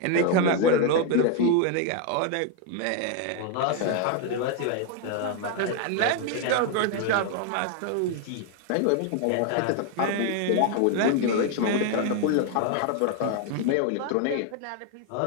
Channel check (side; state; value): both; different; correlation 0.01